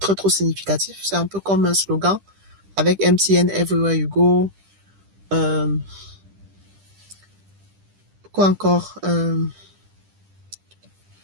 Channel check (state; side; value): late; left; 10 ms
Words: trop significatif. C'est un peu comme un slogan avec MTN Everywhere You Go. Quoi encore?